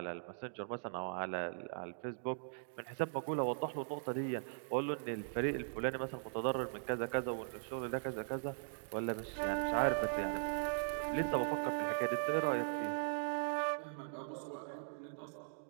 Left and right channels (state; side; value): silent; left; digital silence